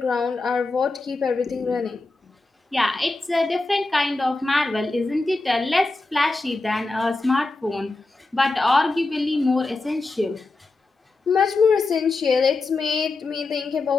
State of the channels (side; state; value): right; quieter; 3.3 dB